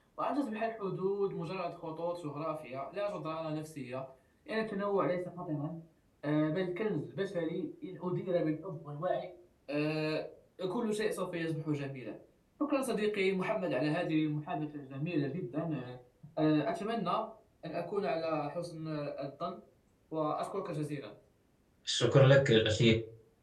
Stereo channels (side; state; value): both; identical; correlation 1.00